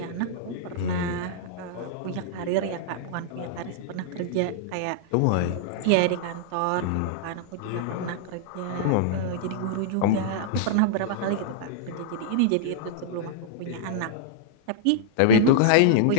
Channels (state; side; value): different; both; correlation -0.02